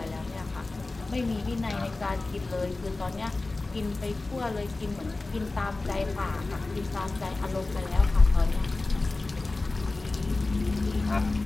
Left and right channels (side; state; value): right; quieter; 3.3 dB